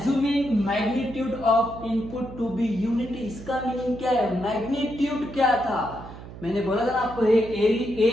magnitude of input to be unity. इसका मीनिंग क्या है, मैग्नीट्यूड क्या था, मैंने बोला था ना आपको,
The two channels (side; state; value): right; noise; hum, 14 dB below the sound